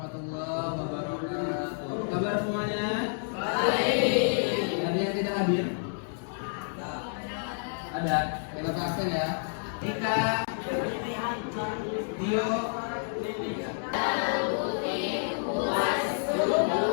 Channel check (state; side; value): silent; right; digital silence